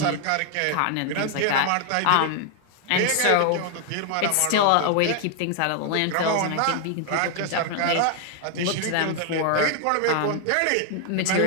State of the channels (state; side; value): different; both; correlation 0.00